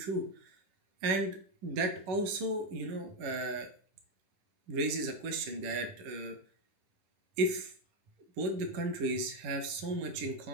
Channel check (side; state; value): left; late; 11 ms